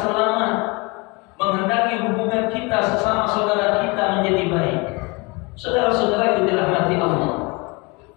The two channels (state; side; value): quieter; right; 27.0 dB